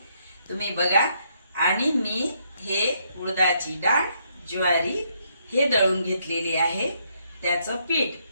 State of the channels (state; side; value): inverted; both; correlation -0.73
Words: तुम्ही बघा. आणि मी हे उडदाची डाळ, ज्वारी हे दळून घेतलेली आहे. त्याचं पीठ,